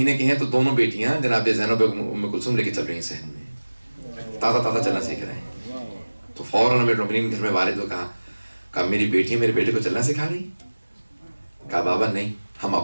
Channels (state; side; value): inverted; both; correlation -1.00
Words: کے ہیں تو دونوں بیٹیاں جناب زینب ام کلثوم لے کے چل رہی ہیں صحن میں، تازہ چلنا سیکھ رہے ہیں. تو فوراً امیر المومنین گھر میں والد کو کہا میری بیٹی میرے بیٹے کو چلنا سکھا رہی؟ کہا بابا نہیں، ہم